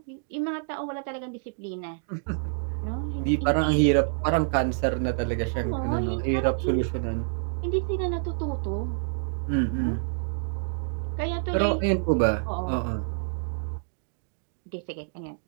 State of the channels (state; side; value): silent; left; digital silence